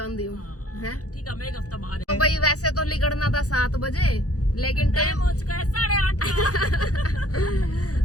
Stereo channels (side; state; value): right; late; 0.67 ms